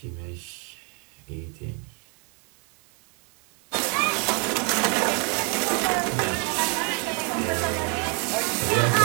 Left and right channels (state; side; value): quieter; left; 36.4 dB